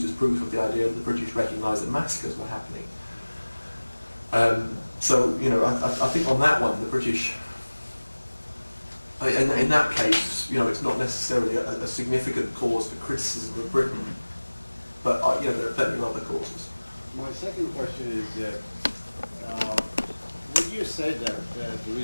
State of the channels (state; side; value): inverted; both; correlation -1.00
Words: as proof of the idea that the British recognised that massacres were happening. So I think on that one, the British, in that case, it's not necessarily a significant cause for criticism of Britain, but there are plenty of other causes. My second question is. Would you say that the